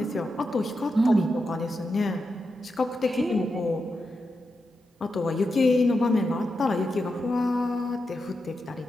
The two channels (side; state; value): both; normal; correlation 0.87